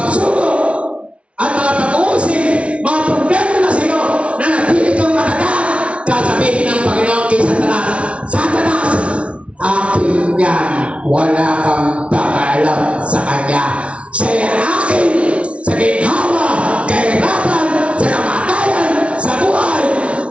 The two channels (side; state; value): left; late; 0.061 ms